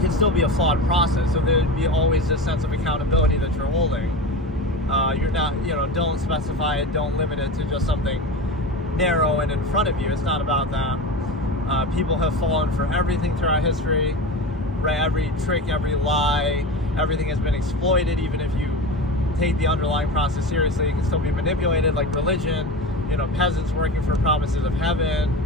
still be a flawed process. So there'd be always this sense of accountability that you're holding. You're not, don't specify it, don't limit it to just something narrow and in front of you. It's not about that. People have fallen for everything throughout history, right? Every trick, every lie, everything has been exploited. Even if you take the underlying process seriously, it can still be manipulated, like religion, peasants working for promises of heaven.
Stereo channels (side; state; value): both; normal; correlation 0.27